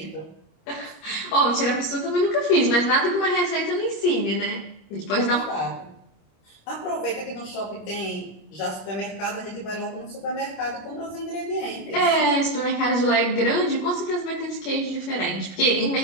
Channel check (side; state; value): right; late; 25 ms